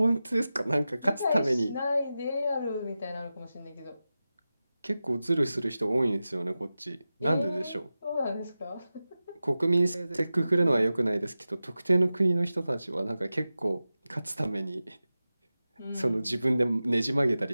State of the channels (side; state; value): both; inverted; correlation -0.94